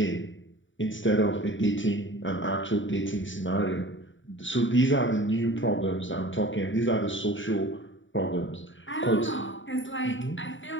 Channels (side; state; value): right; late; 0.55 ms